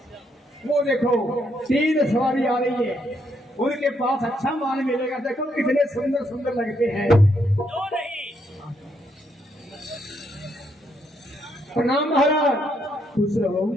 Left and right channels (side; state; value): both; normal; correlation 0.75